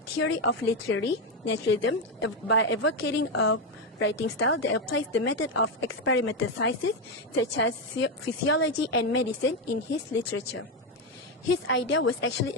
theory of literary naturalism by advocating a writing style that applies the method of experimental sciences such as physiology and medicine in his literature. His idea was actually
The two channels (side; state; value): both; normal; correlation 0.08